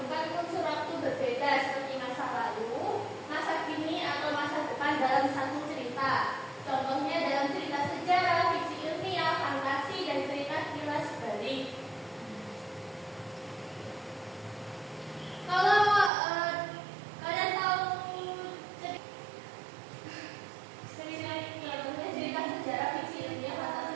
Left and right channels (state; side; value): drops out; left; at 16.1 s